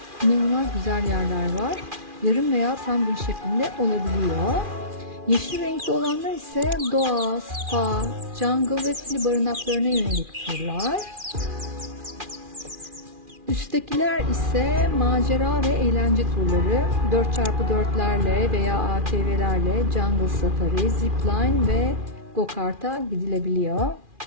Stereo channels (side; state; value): left; late; 2.4 ms